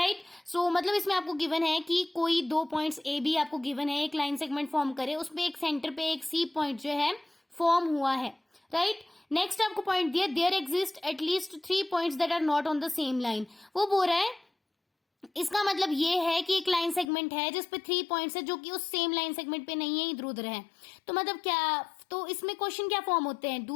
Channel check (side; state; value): right; drops out; at 17.1 s